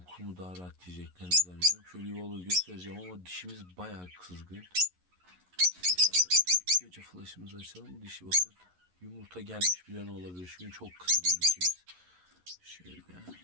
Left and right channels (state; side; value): late; left; 11 ms